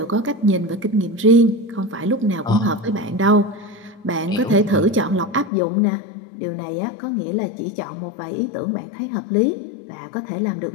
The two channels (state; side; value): drops out; right; at 5.5 s